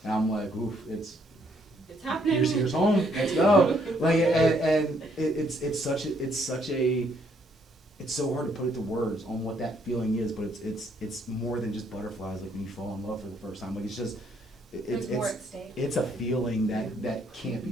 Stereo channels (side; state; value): both; normal; correlation 0.69